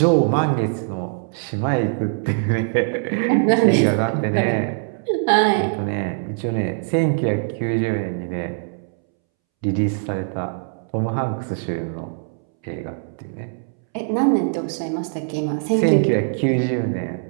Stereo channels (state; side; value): silent; left; 64 dB below the other